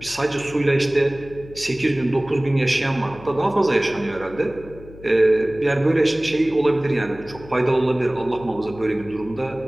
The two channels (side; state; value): left; noise; hum, 18 dB below the sound